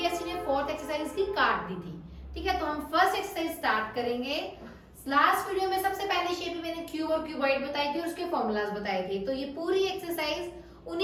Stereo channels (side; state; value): both; identical; correlation 1.00